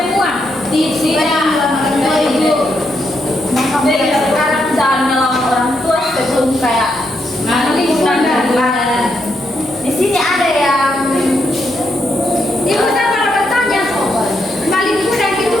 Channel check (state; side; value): noise; right; hum, 25 dB below the sound